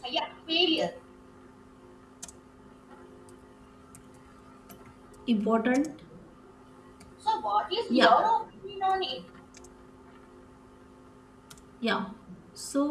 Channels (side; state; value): both; identical; correlation 1.00